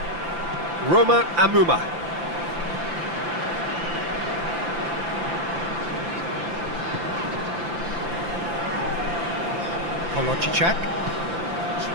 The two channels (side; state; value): left; late; 5.9 ms